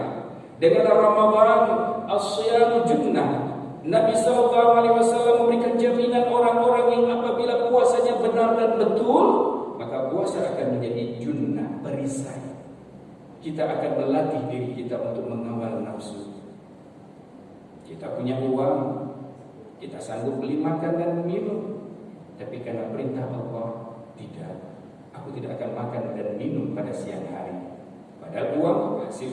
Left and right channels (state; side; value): identical; both; correlation 1.00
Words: dengan Ramadan, as-siyam junnah. Nabi SAW memberikan jaminan orang-orang yang apabila puasanya benar dan betul, maka puasa akan menjadi junnah, perisai. Kita akan melatih diri kita untuk mengawal nafsu. Kita punya uang, kita sanggup beli makan dan minum, tapi karena perintah Allah, tidak. Aku tidak akan makan dan minum pada siang hari. Padahal uang